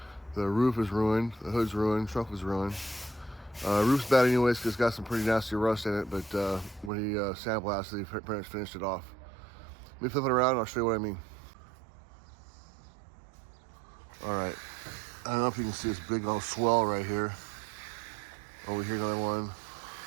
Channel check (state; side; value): drops out; left; at 6.9 s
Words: The roof is ruined, the hood's ruined, trunk was ruined. Roof's bad anyways because it's got some pretty nasty rust in it, but when he sandblasted, he pretty much finished it off. Let me flip it around and I'll show you what I mean. Alright, I don't know if you can see this big old swell right here. Over here, another one.